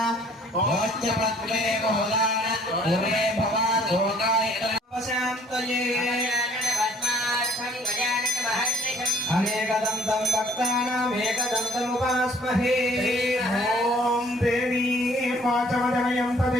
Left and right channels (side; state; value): both; normal; correlation 0.58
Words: అనేకదంతం భక్తానాం ఏకదంతముపాస్మహే. ఓం దేవీ వాచమజనయం